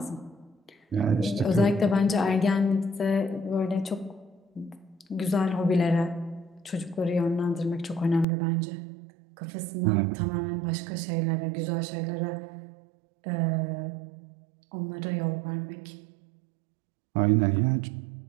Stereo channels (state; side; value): drops out; left; at 8.2 s